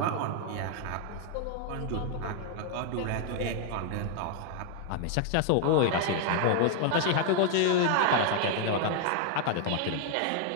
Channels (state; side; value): different; both; correlation 0.00